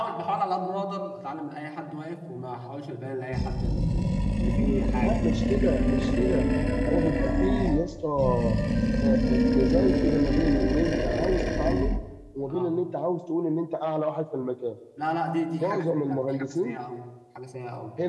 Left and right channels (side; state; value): both; identical; correlation 1.00